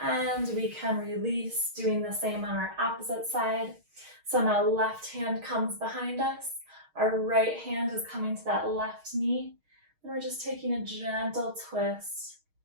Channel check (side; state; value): left; late; 6.4 ms